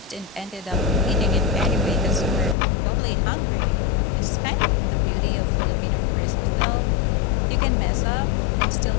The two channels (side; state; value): right; drops out; at 2.6 s